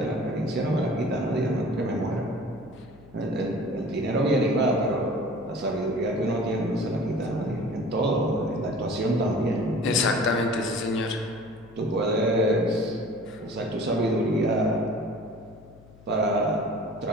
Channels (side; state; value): left; noise; hum, 23 dB below the sound